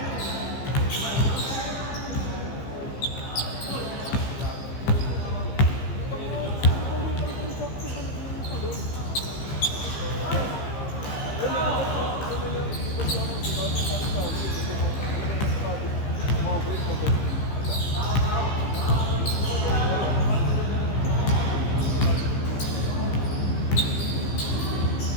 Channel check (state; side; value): late; right; 15 ms